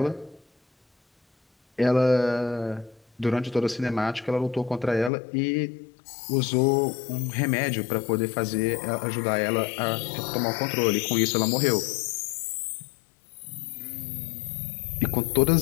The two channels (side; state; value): right; drops out; at 5.1 s